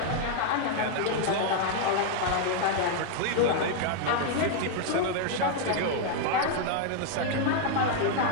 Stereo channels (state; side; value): different; both; correlation 0.00